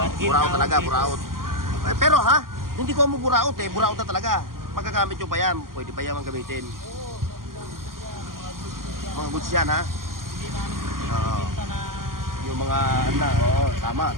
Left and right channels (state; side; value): late; left; 0.91 ms